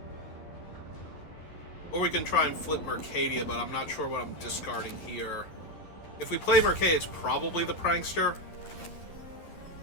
Or we can try and flip Mercadia, but I'm not sure what I'm discarding here. If we play Mercadia, it's probably the Prankster.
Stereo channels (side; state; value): right; late; 11 ms